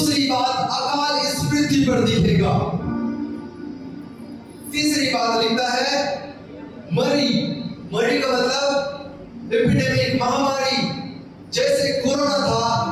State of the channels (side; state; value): both; identical; correlation 1.00